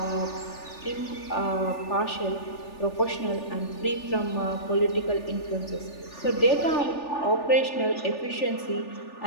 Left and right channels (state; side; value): late; right; 3.4 ms